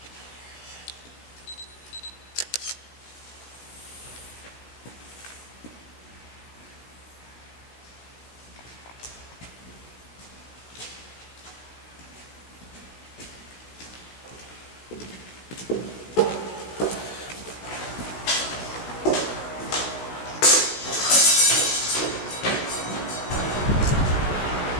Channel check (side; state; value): right; late; 16 ms